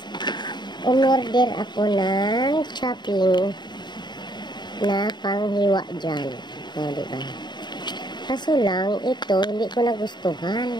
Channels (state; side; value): late; right; 0.21 ms